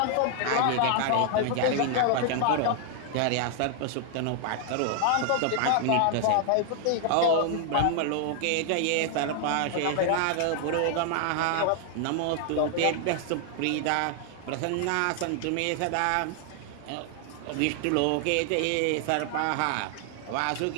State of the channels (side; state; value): both; different; correlation 0.00